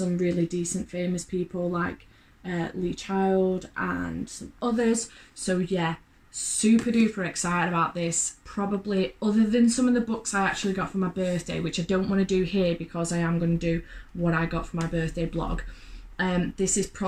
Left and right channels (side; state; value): both; identical; correlation 1.00